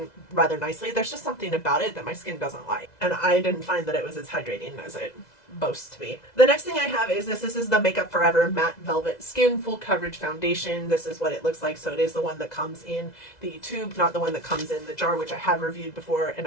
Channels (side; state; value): right; late; 2.0 ms